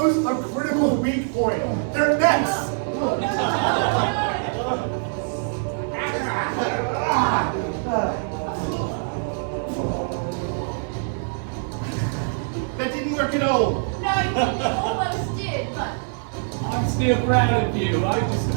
a critical weak point. Their necks. That didn't work at all. No, you almost did, but I'm still proud of you. I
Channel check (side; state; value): left; silent; 63 dB below the other